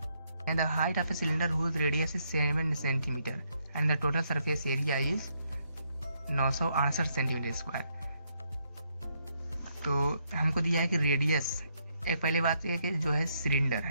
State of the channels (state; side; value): inverted; both; correlation -0.75